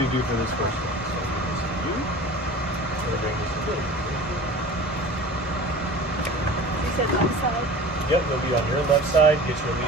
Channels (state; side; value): normal; both; correlation 0.39